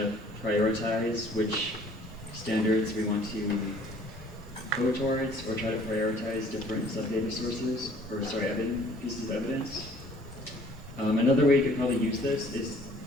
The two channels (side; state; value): both; normal; correlation 0.56